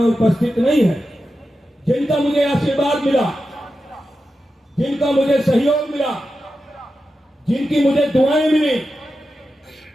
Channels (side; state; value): both; normal; correlation 0.91